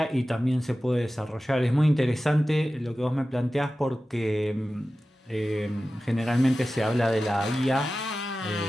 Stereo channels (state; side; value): normal; both; correlation 0.95